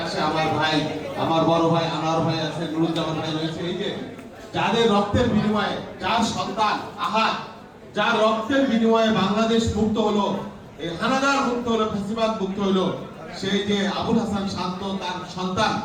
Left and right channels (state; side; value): identical; both; correlation 1.00